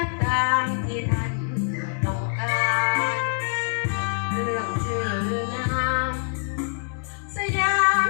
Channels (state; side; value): silent; right; digital silence